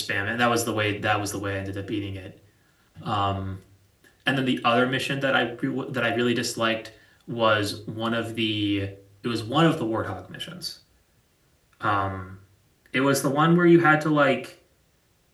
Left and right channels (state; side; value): identical; both; correlation 1.00